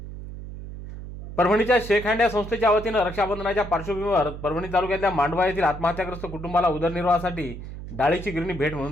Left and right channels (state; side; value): noise; right; hum, 11 dB below the sound